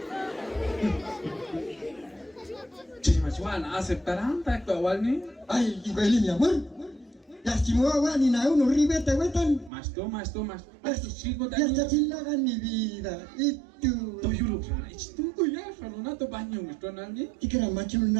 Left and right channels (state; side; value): drops out; left; at 9.7 s